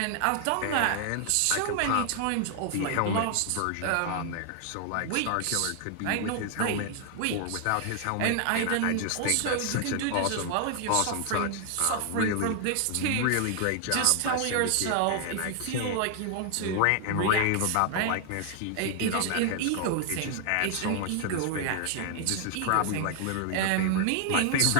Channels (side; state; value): both; different; correlation 0.00